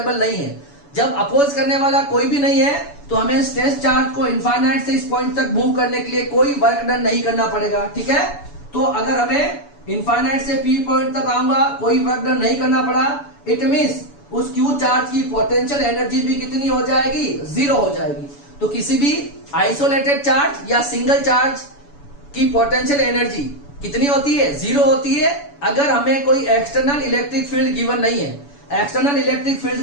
नहीं है। जब अपोज करने वाला कोई भी नहीं है तो हमें स्ट्रेस चार्ज को इनफाइनाइट से इस पॉइंट तक मूव करने के लिए कोई वर्क डन नहीं करना पड़ेगा, ठीक है। तो अगर हमें इनफाइनाइट से P पॉइंट तक आऊंगा, कोई वर्क डन नहीं करना पड़ा, इट मींस उस Q चार्ज की पोटेंशियल एनर्जी भी कितनी हो जाएगी? 0 हो जाएगी। तो किसी भी आइसोलेटेड चार्ज या सिंगल चार्ज की पोटेंशियल एनर्जी कितनी होती है? 0 होती है अगर हमें कोई एक्सटर्नल इलेक्ट्रिक फील्ड गिवन नहीं है। एक्सटर्नल इलेक्ट्रिक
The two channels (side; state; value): right; late; 7.0 ms